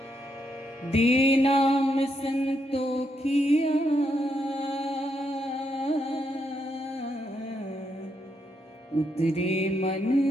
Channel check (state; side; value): normal; both; correlation 0.79